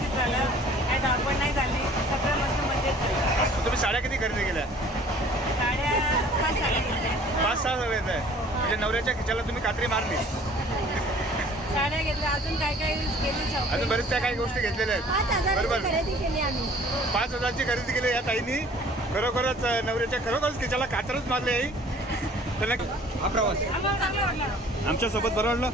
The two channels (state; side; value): normal; both; correlation 0.52